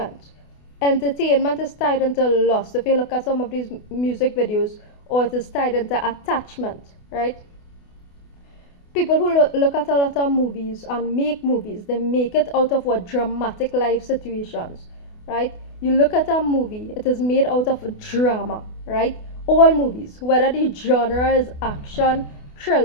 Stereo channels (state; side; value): late; right; 28 ms